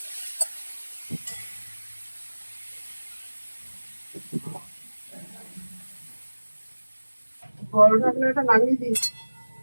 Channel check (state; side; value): inverted; both; correlation -1.00